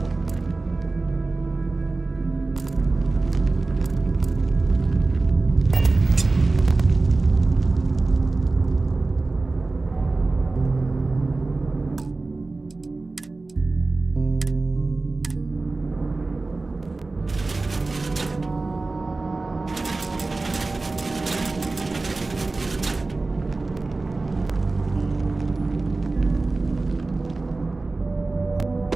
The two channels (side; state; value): left; quieter; 3.4 dB